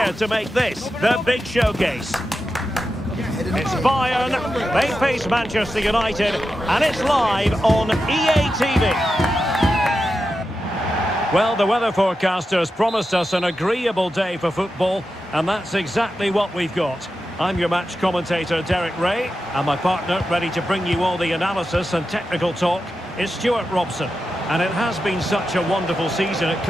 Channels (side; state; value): both; normal; correlation 0.90